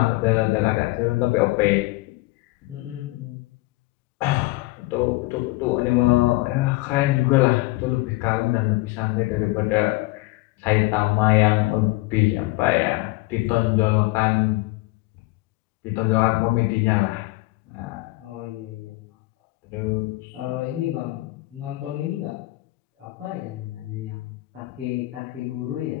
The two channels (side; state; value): right; quieter; 20.9 dB